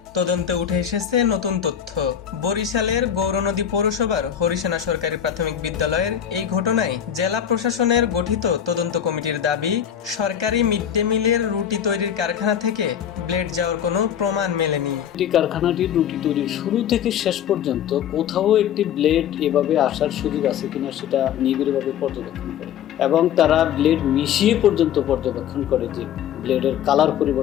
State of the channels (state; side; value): quieter; right; 9.3 dB